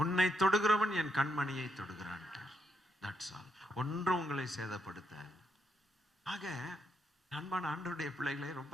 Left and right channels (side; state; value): both; normal; correlation 0.79